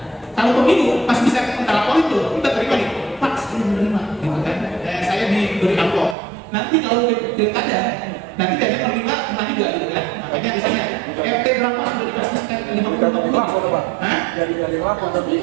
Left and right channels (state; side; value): drops out; left; at 6.2 s